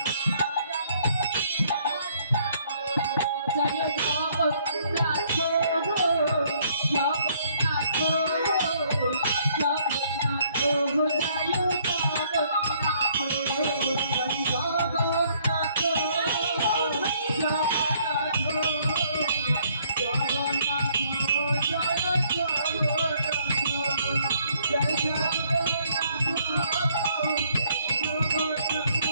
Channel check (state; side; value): inverted; both; correlation -0.65